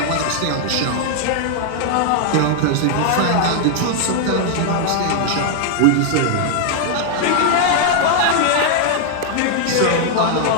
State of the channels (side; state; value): both; different; correlation 0.00